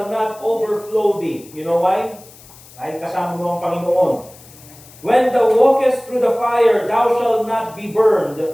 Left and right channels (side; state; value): left; noise; hiss, 22 dB below the sound